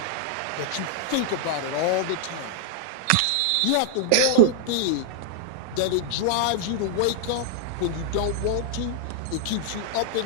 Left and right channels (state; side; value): different; both; correlation 0.00